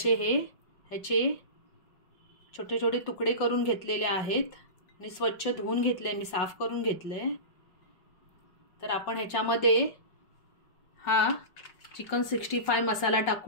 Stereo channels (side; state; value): right; late; 5.5 ms